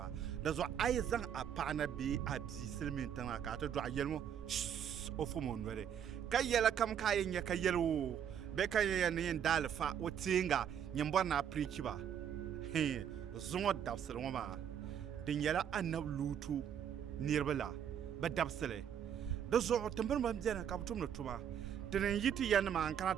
di zuɣu a yi zaŋ a paɣa na bee a bia silmiin tiŋa ka a ti dɔɣa yɛli ŋɔ o fom o noli ka yɛli kam ka a yɛn nyɛ ka yɛli o bɛ ka yɛn ni yɛn daali fa o teenga yɛn bɔri na pirichi ba zuŋo dabsili ŋɔ maa di nyɛla anabi luutu niriba la bi dabsili di zuɣu timbini ban biɛni ka bi tumdi tuma ti ni yi ti ya nima n kana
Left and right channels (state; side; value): quieter; left; 8.8 dB